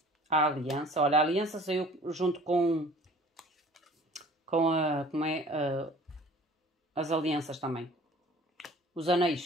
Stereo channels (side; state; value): both; normal; correlation 0.49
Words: A aliança, olha, a aliança saiu junto com as alianças também. Os